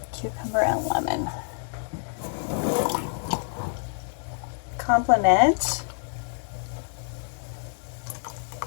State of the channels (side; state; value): right; silent; 58 dB below the other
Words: Cucumber and lemon. Complement